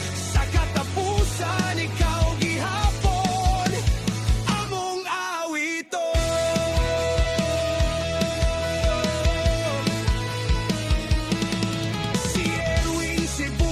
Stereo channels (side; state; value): both; identical; correlation 1.00